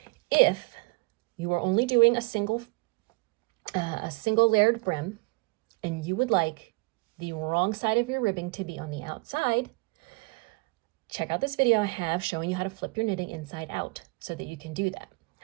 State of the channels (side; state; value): left; quieter; 27.9 dB